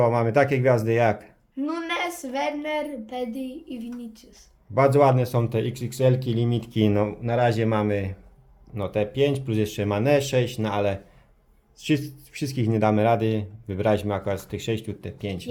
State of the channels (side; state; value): both; identical; correlation 1.00